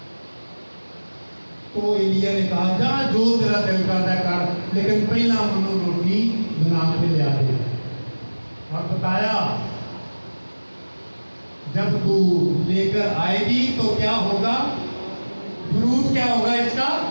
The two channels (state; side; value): inverted; both; correlation -1.00